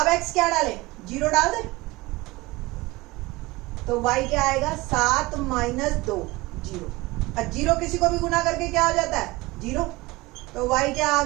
x क्या डालें, 0 डाल दें, तो y क्या आएगा 7 माइनस 2 0। अब 0 किसी को भी गुना करके क्या हो जाता है 0, तो y क्या आ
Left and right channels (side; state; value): left; quieter; 21.4 dB